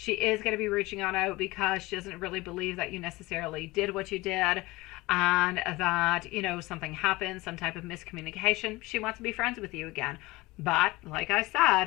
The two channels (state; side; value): quieter; right; 20.8 dB